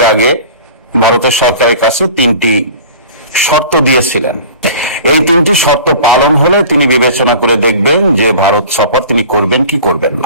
আগে ভারতের সরকারের কাছে 3টি শর্ত দিয়েছিলেন। এই 3টি শর্ত পালন হলে তিনি বিবেচনা করে দেখবেন যে ভারত সফর তিনি করবেন কি করবেন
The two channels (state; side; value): inverted; both; correlation -0.42